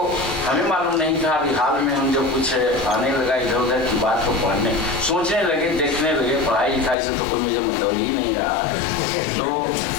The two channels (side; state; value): right; drops out; at 7.0 s